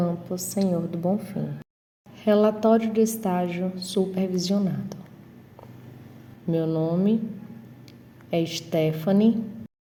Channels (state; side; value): identical; both; correlation 1.00